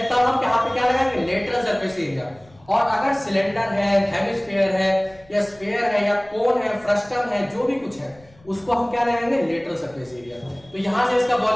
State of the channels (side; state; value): left; noise; rumble, 28 dB below the sound